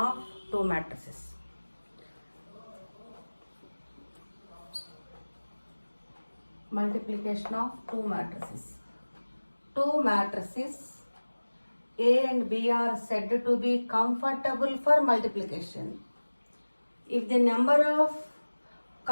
two matrices. Multiplication of two matrices. Two matrices A and B are said to be comfortable for multiplication if the number of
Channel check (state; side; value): inverted; both; correlation -1.00